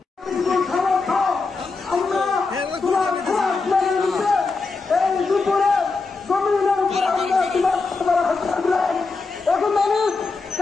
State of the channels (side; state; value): right; quieter; 4.1 dB